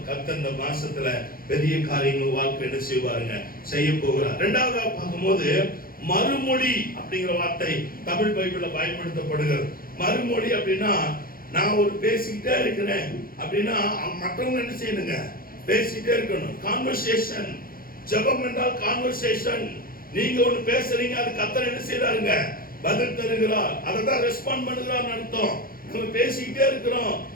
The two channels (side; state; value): right; late; 0.42 ms